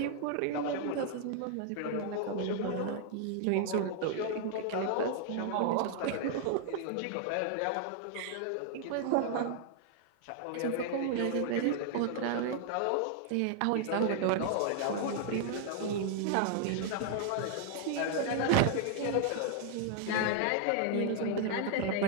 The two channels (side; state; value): both; different; correlation 0.00